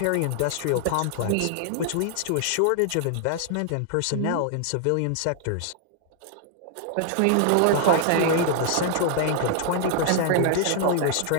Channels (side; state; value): both; different; correlation 0.00